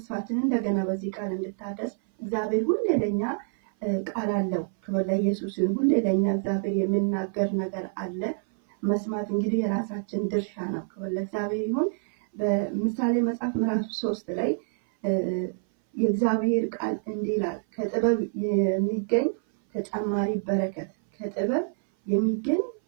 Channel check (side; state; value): left; silent; 58 dB below the other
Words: እንደገና በዚህ ቃል እንድታደስ እግዚአብሔር ሁሌ ለኛ ቃል አለው። ክብር ለኢየሱስ ይሁን። ሁሌ ለኛ እግዚአብሔር የሚናገር ነገር አለ። መስማት እንግዲህ የራሳችን ድርሻ ነው። ክብር ለእግዚአብሔር ይሁን። በምሳሌ መጽሐፍ ምዕራፍ 3 ላይ የእግዚአብሔር ቃል እንዲህ ይላል፣ ከጥበብ የሚገኝ ተጨማሪ በረከት፣ ከጥበብ የሚገኝ